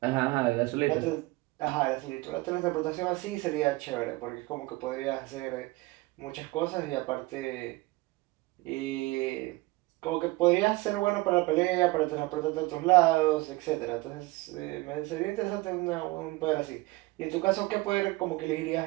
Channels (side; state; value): left; quieter; 21.7 dB